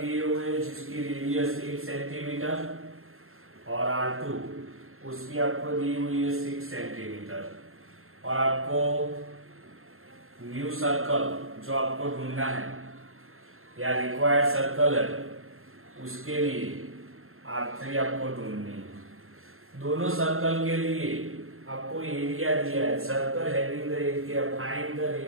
हुए हैं जिसकी रेडियस 1 सेंटीमीटर और R2 उसकी आपको दी हुई है 6 सेंटीमीटर। और आपको न्यू सर्कल जो आपको ढूंढना है या रिक्वायर्ड सर्कल है उसके लिए R3 आपको ढूंढनी है। दोनों सर्कल के लिए आपको एरिया दिया है। Circle having the area, find the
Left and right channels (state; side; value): late; left; 0.61 ms